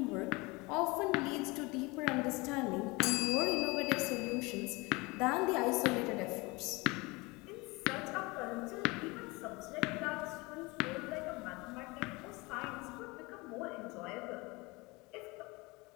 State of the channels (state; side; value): quieter; right; 24.7 dB